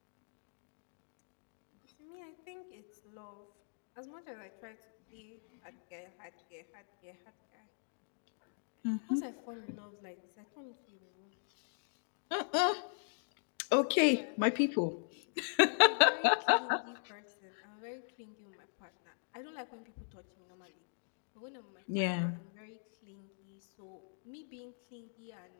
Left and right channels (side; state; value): right; silent; digital silence